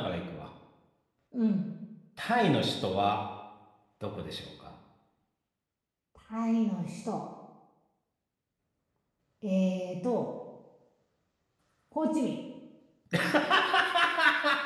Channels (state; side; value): identical; both; correlation 1.00